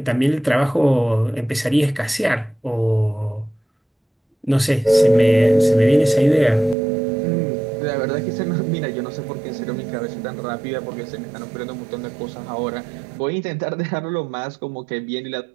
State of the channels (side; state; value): left; drops out; at 6.8 s